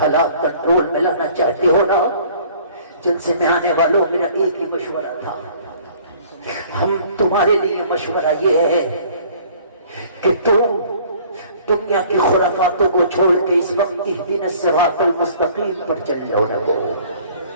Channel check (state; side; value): inverted; both; correlation -0.53